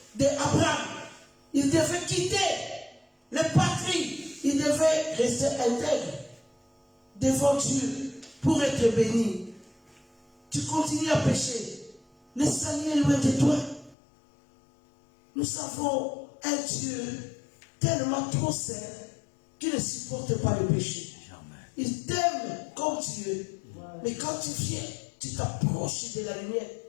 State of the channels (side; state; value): right; drops out; at 14.0 s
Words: d'Abraham, ils devaient quitter les patries. Ils devaient rester intègres devant Dieu pour être bénis. Tu continues à pécher. Le Seigneur est loin de toi. Nous avons un Dieu tellement trop saint qui ne supporte pas le péché. Il t'aime comme Dieu. Mais quand tu viens, tu t'approches de la lumière.